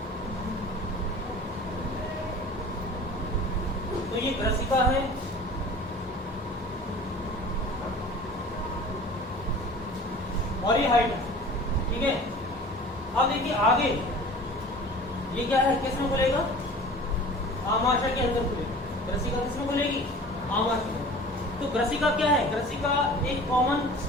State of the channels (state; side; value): normal; both; correlation 0.42